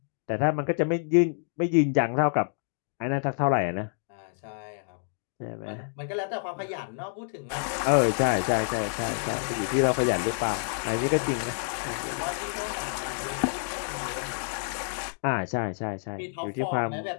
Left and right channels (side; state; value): right; silent; digital silence